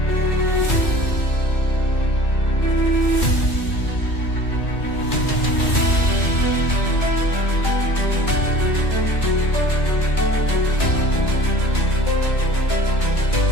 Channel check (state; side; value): late; right; 2.4 ms